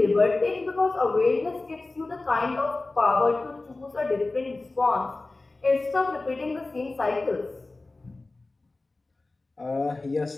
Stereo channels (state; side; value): quieter; right; 3.2 dB